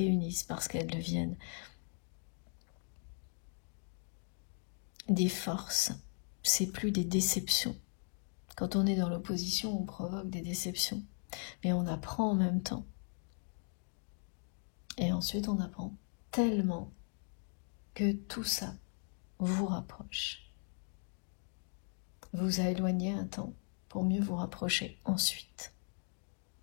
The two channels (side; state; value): right; silent; 52 dB below the other